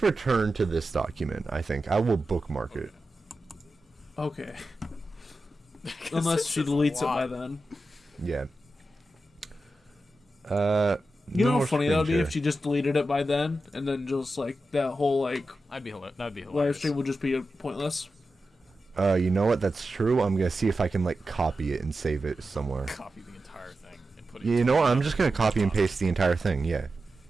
return to this document. I think I will bookmark it. Okay. Unless she deletes it by then. Yeah. You know no how funny that would be screen if she just deleted it by then, and then just like that whole like That'd be hilarious. live stream would just be pointless. You know what? That's true. I'm gonna see if I can like copy it and save it somewhere. Copy the entire thing and put it. You know what? I'm just gonna copy and paste the entire thing. Yeah.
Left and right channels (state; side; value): normal; both; correlation 0.91